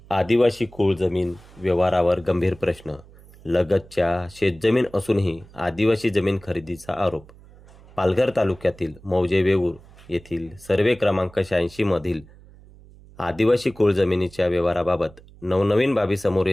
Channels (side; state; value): right; noise; hum, 23 dB below the sound